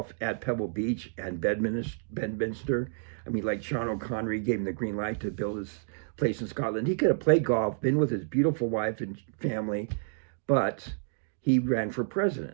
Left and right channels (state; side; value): silent; left; digital silence